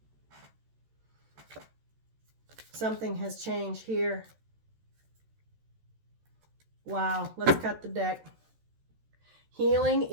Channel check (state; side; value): late; left; 14 ms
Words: Something has changed here. Wow, let's cut the deck. Healing